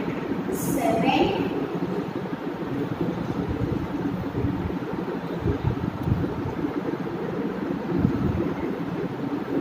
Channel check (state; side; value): identical; both; correlation 1.00